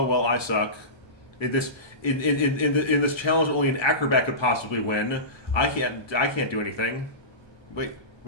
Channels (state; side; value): late; right; 1.2 ms